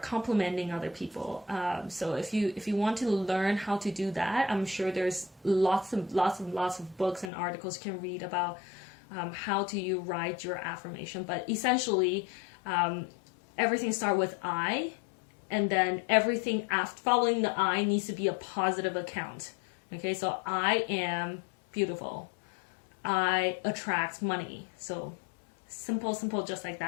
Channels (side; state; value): right; drops out; at 7.3 s